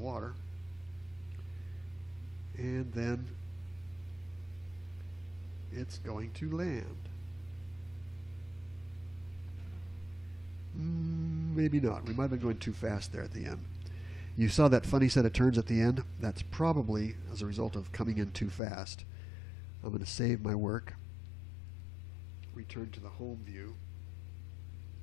And then it's going to land. Maybe not. We might have been going too fast there at the end. You saw that funny set of turns at the end? That's probably as a result of coming in too fast. I'm going to save my work, return to the home view,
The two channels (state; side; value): drops out; right; at 18.6 s